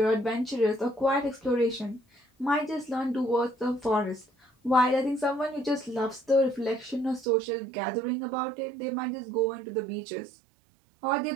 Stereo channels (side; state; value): left; drops out; at 7.2 s